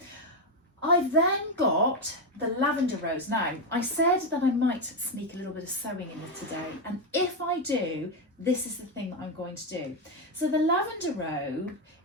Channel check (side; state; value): both; normal; correlation 0.07